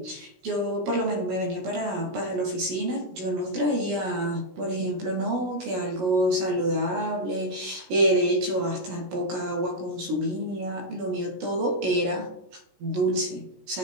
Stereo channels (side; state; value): left; late; 16 ms